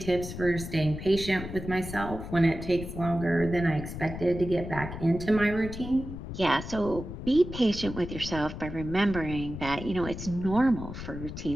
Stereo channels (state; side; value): noise; left; rumble, 9 dB below the sound